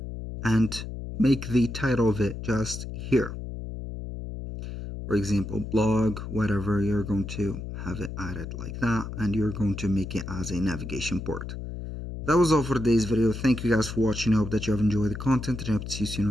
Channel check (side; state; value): left; noise; hum, 8 dB below the sound